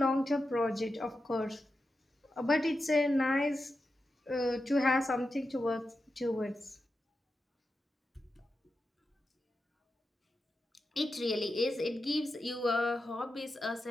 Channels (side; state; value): both; normal; correlation 0.90